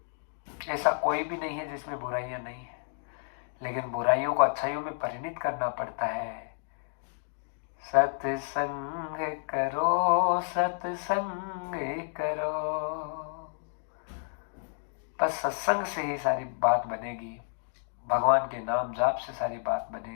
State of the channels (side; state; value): right; silent; digital silence